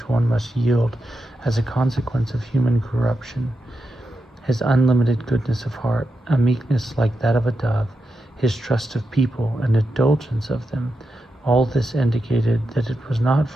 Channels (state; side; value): normal; both; correlation 0.87